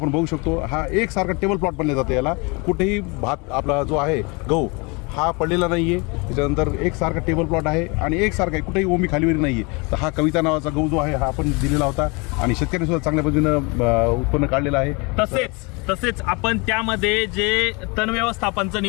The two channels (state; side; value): quieter; right; 29.1 dB